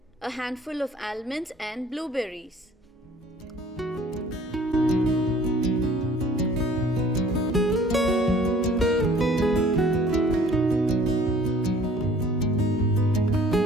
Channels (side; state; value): both; normal; correlation 0.53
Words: a handful of almonds and blueberries.